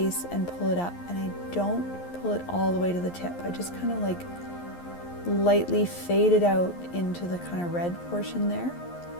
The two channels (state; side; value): late; right; 11 ms